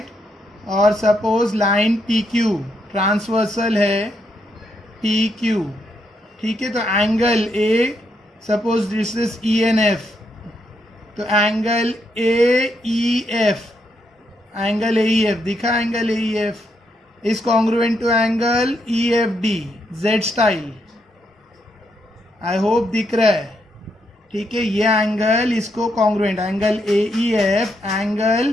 और suppose line P Q transversal है, पी क्यू, ठीक है। तो angle A, suppose this is E N F, तो angle A E F, angle A E F दिखा, angle A E F is congruent to angle EFD, Z style. I hope दिख रहा है, ठीक है। ये एंगल इसको congruent, angle AEF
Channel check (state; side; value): normal; both; correlation 0.78